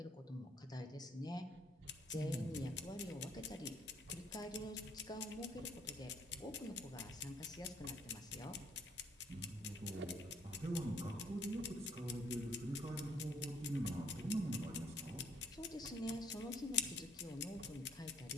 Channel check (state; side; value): normal; both; correlation 0.64